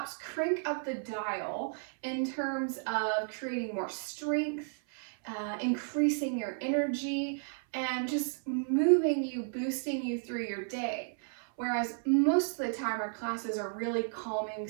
crank up the dial in terms of creating more strength, increasing your energy, and just moving you, boosting you through your day. Whereas most of the time our classes are really calming,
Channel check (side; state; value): left; silent; 56 dB below the other